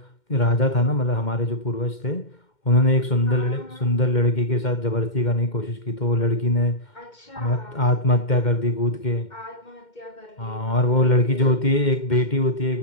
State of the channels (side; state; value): right; late; 2.1 ms